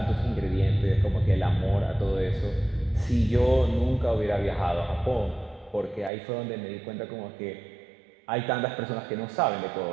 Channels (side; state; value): left; drops out; at 6.1 s